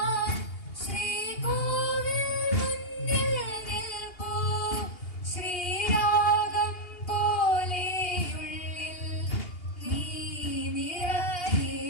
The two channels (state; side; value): late; right; 2.8 ms